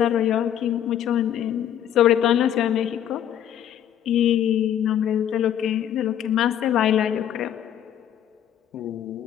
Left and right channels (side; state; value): right; quieter; 10.2 dB